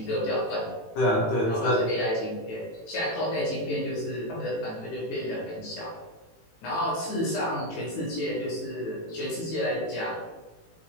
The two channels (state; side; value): late; right; 18 ms